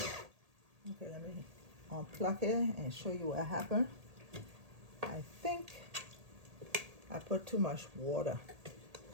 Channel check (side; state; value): left; late; 1.8 ms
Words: Okay, let me unplug it and show you what happened. I think I put too much water